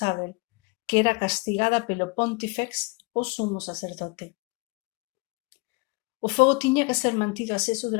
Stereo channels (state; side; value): quieter; right; 27.4 dB